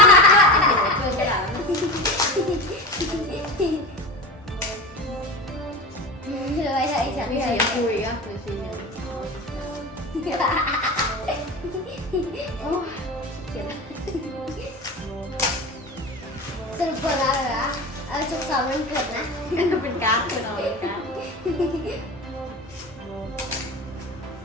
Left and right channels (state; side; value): normal; both; correlation 0.28